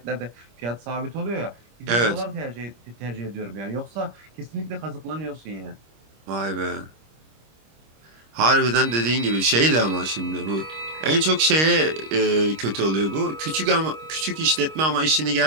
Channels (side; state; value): left; late; 25 ms